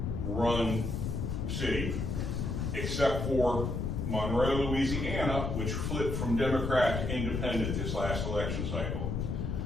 city, except for Monroe, Louisiana, which flipped from Democrat to independent this last election cycle.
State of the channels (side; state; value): left; noise; rumble, 1 dB below the sound